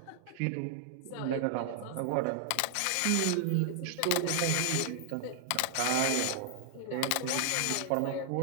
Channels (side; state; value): both; different; correlation -0.01